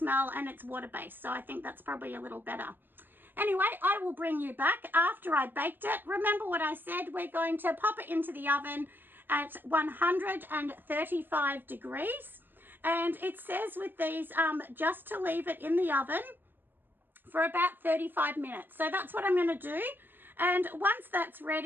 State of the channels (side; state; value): left; late; 0.095 ms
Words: and it's water-based. So I think that's probably a little better. Anyway, I will bring you back after I baked it. Remember what I said, we're going to pop it into the oven at 135 degrees. And it says with these, just to leave it in the oven for about 35 minutes. So that's what I'm going to do. And once that's